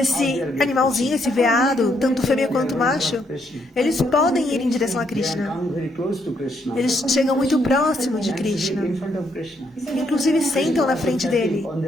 animalzinho, esse veado, tanto fêmea quanto macho, eles podem ir em direção a They Krishna. come very close to Krishna. Eles chegam muito próximo de And sit Krishna. in front of Krishna. Inclusive sentam na frente dele. On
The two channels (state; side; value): normal; both; correlation 0.74